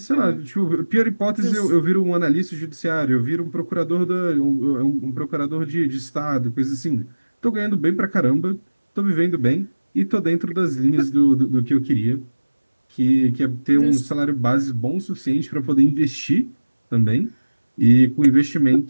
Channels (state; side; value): inverted; both; correlation -1.00